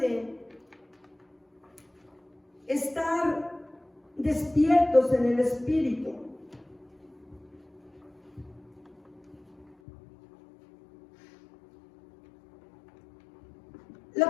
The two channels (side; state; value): right; drops out; at 9.8 s